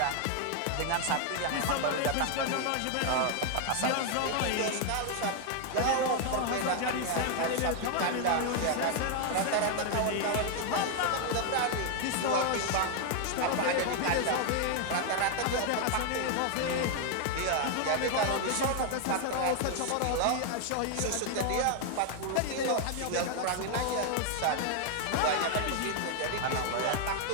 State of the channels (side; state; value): both; different; correlation 0.00